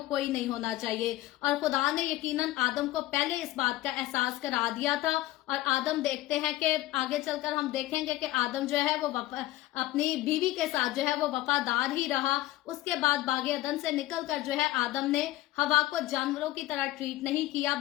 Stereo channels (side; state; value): right; quieter; 16.5 dB